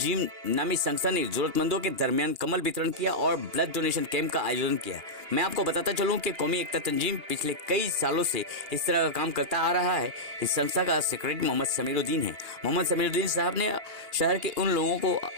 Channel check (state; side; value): late; left; 2.8 ms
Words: नामी संस्था ने जरूरतमंदों के दरमियान कमल वितरण किया और ब्लड डोनेशन कैंप का आयोजन किया। मैं आपको बताता चलूं कि कौमी एकता तंजीम पिछले कई सालों से इस तरह का काम करता आ रहा है। इस संस्था का सेक्रेटरी मोहम्मद समीरुद्दीन है। मोहम्मद समीरुद्दीन साहब ने शहर के उन लोगों को